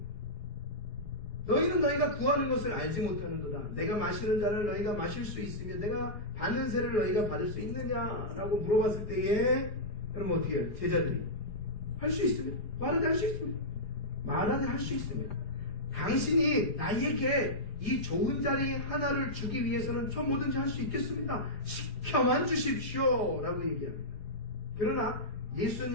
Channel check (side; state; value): right; late; 4.8 ms